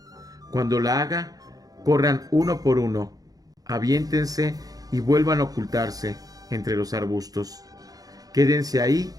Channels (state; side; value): late; left; 0.18 ms